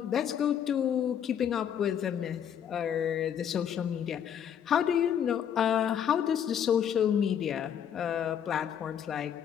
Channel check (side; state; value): right; quieter; 8.8 dB